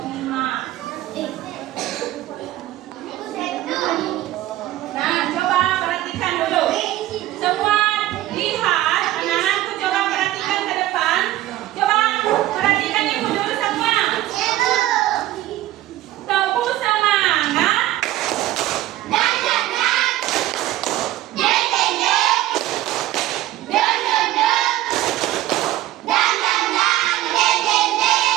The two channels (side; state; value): left; quieter; 14.8 dB